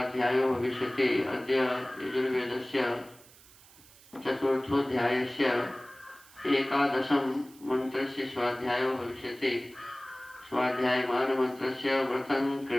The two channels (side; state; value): right; noise; hiss, 24 dB below the sound